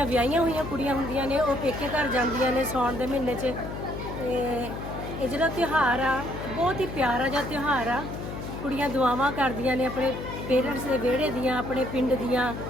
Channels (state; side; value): noise; left; hum, 8 dB below the sound